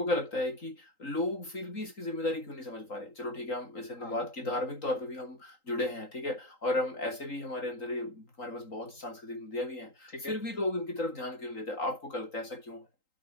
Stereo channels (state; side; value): late; right; 3.8 ms